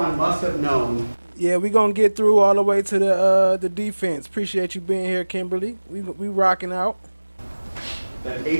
must have known. Yeah, we're going to get through all the way to the defense. Appreciate you being here, Kimberly. We rocking out. That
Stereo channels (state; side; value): inverted; both; correlation -1.00